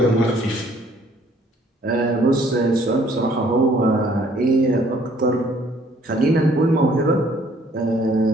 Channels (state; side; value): normal; both; correlation 0.61